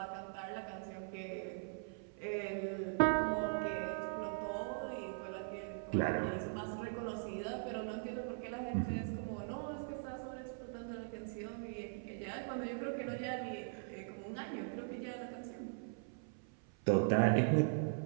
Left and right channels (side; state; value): left; silent; 51 dB below the other